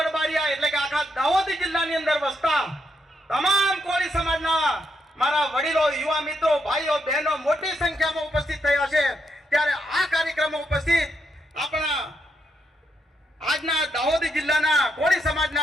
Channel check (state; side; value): normal; both; correlation 0.80